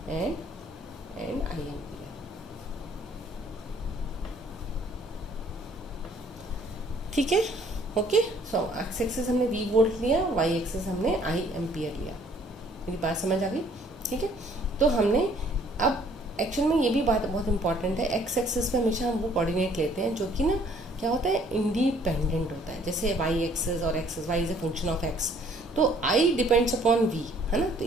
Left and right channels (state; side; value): normal; both; correlation 0.60